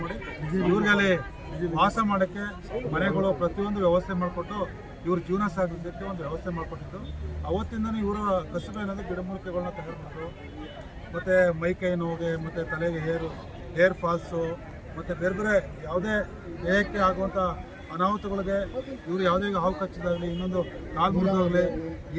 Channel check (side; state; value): both; identical; correlation 1.00